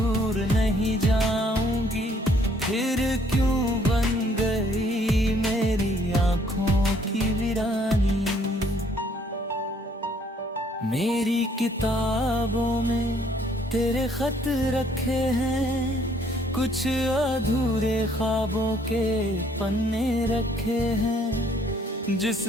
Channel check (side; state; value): both; normal; correlation 0.64